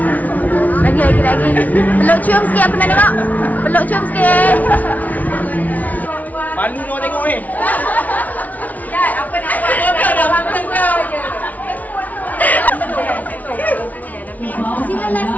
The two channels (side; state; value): right; late; 0.074 ms